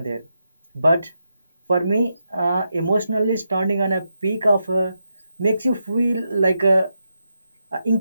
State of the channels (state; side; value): inverted; both; correlation -0.85